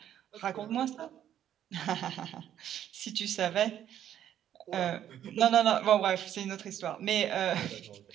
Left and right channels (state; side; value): quieter; left; 10.7 dB